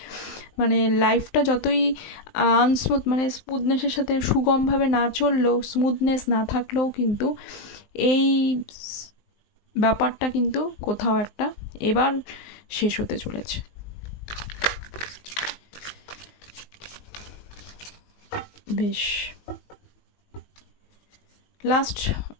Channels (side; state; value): right; late; 19 ms